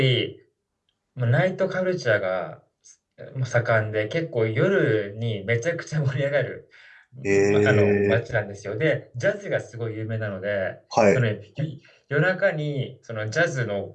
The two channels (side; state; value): both; identical; correlation 1.00